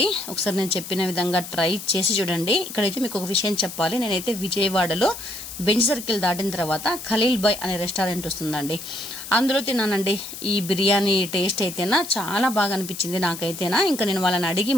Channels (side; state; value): left; noise; hiss, 11 dB below the sound